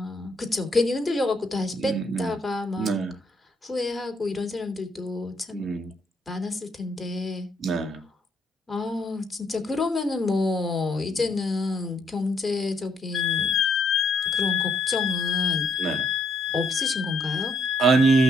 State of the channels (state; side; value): normal; both; correlation 0.71